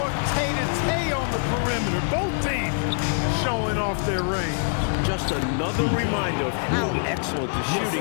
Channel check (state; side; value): silent; right; 62 dB below the other